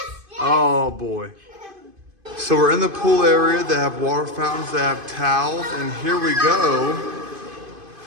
Oh boy. So we're in the pool area. They have water fountains, they have towels, and here we go.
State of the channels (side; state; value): left; late; 2.5 ms